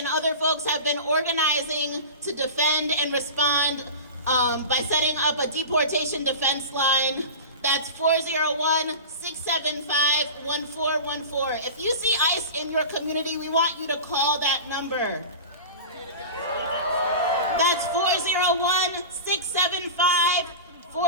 other folks have been organizing to defend and respond by setting up a deportation defense line. That's 401-675-1414. If you see ICE in your community, we want you to call that number. That's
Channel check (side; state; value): both; inverted; correlation -0.30